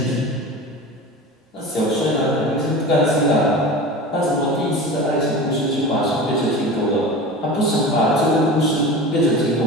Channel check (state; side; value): normal; both; correlation 0.32